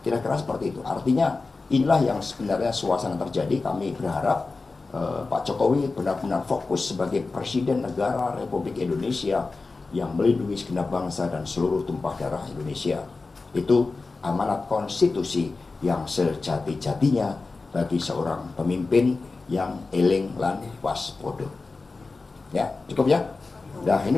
Kira-kira seperti itu. Artinya inilah yang sebenarnya suasana terjadi. Kami berharap Pak Jokowi benar-benar fokus sebagai Presiden Negara Republik Indonesia yang melindungi segenap bangsa dan seluruh tumpah darah Indonesia. Itu amanat konstitusi yang sejati-jatinya bagi seorang pemimpin yang eling lan waspada. Ya, cukup ya? Nah,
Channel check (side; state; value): right; quieter; 3.8 dB